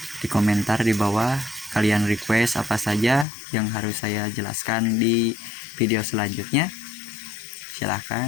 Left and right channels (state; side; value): drops out; right; at 3.2 s